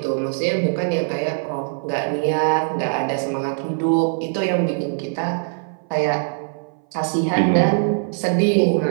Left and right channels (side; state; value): left; silent; 59 dB below the other